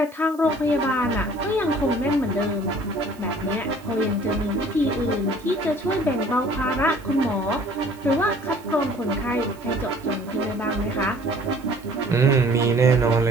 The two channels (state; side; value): noise; right; hiss, 26 dB below the sound